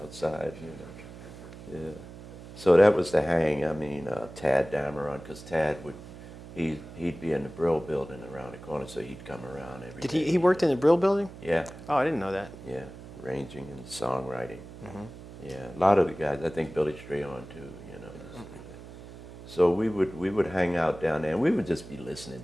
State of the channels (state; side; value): noise; right; hum, 15 dB below the sound